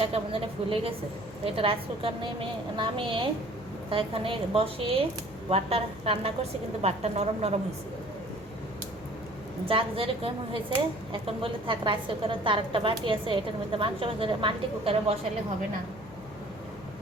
কেমন জানি ফুলে গেছে। তো এটা রাইস কুকার নামিয়ে তা এখানে বসিয়ে ভাতটা রান্না করছি, কিন্তু ভাতটা নরম নরম হয়েছে। যাক যেরকম হয়েছে, এখন বলে থাক রাইস কুকারে তার একটা বাটি আছে, এটার মধ্যে মাংস ভেজে মাল্টি কুকারে বসালে হবে না।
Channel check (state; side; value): noise; left; hum, 21 dB below the sound